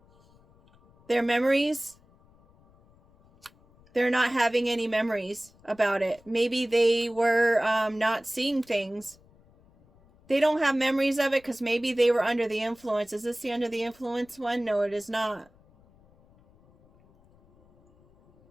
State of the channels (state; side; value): noise; left; rumble, 30 dB below the sound